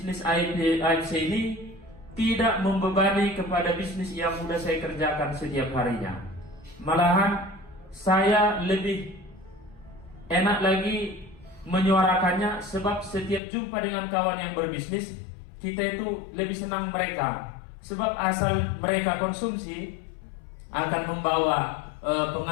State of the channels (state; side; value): drops out; right; at 13.4 s